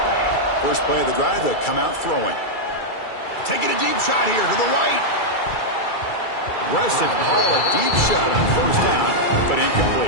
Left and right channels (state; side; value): late; right; 2.3 ms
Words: First play of the drive, they come out throwing. Taking a deep shot here to the right. Aggressive call, a deep shot on first down, but